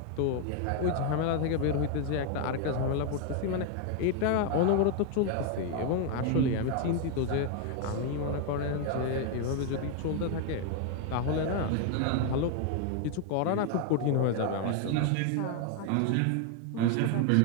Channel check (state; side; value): different; both; correlation 0.01